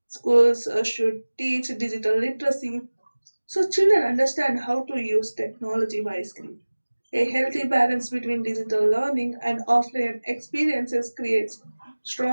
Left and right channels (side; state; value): both; inverted; correlation -1.00